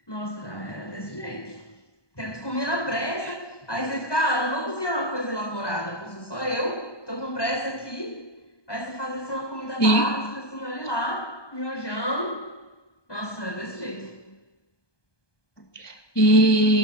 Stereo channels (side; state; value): right; late; 1.2 ms